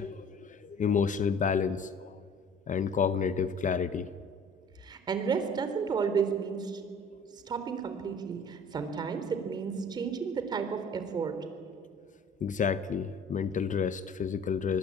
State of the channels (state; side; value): normal; both; correlation 0.48